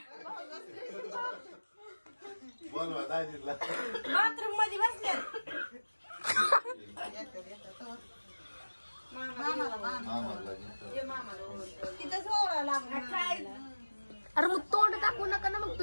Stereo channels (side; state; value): both; inverted; correlation -1.00